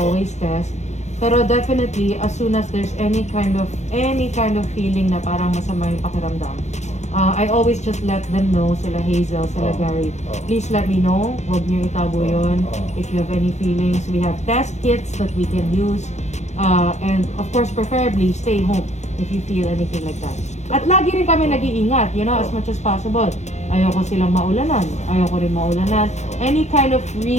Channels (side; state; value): right; late; 0.33 ms